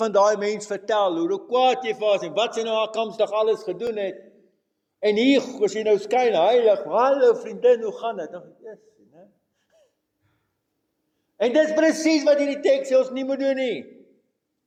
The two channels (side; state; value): both; identical; correlation 1.00